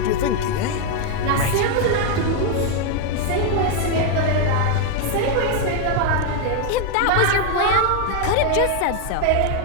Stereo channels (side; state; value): both; different; correlation 0.01